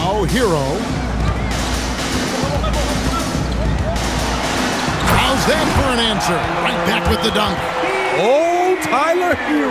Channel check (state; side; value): identical; both; correlation 1.00